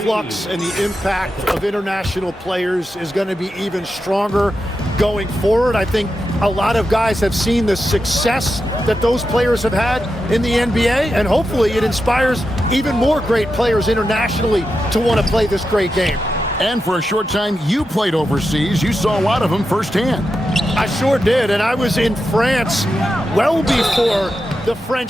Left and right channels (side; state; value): both; normal; correlation 0.89